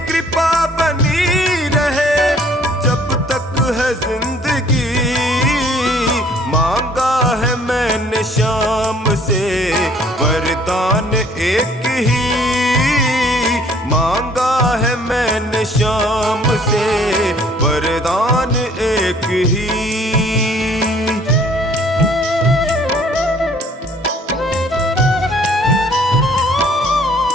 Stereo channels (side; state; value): both; normal; correlation 0.58